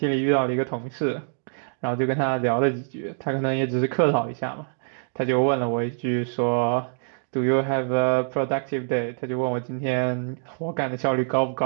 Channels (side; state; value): left; silent; digital silence